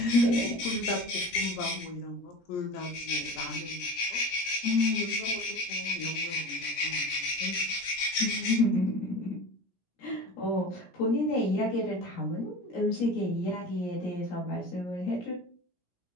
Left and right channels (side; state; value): right; late; 17 ms